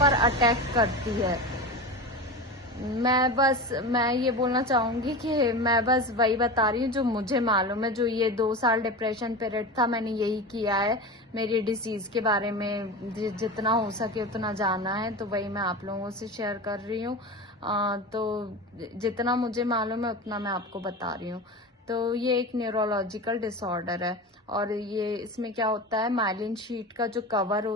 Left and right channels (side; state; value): both; normal; correlation 0.27